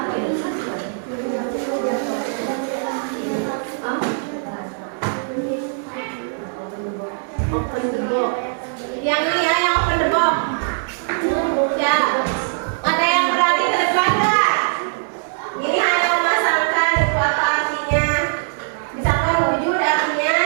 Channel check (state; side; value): silent; left; digital silence